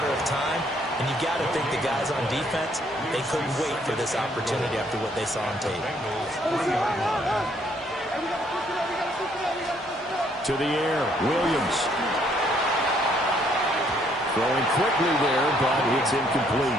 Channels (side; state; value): both; normal; correlation 0.67